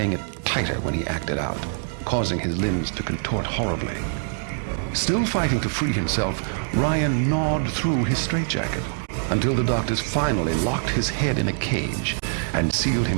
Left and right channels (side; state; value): left; silent; digital silence